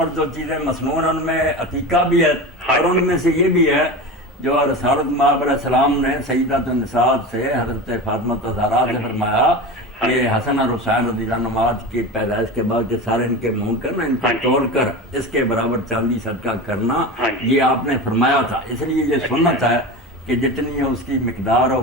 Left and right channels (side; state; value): both; normal; correlation 0.27